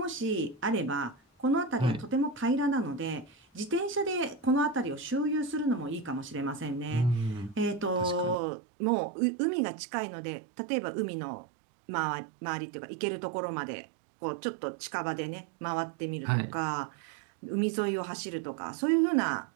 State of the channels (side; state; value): left; drops out; at 8.3 s